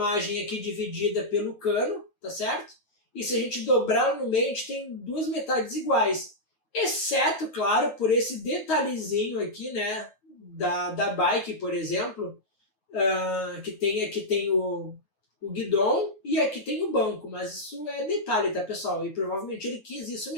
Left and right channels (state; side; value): late; right; 9.4 ms